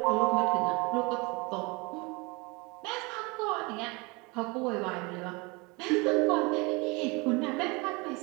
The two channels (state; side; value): quieter; left; 27.4 dB